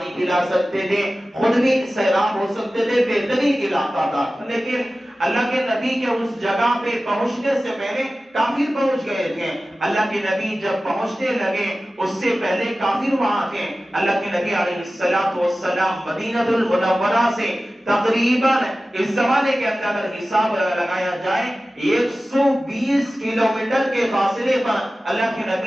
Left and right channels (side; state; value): both; normal; correlation 0.96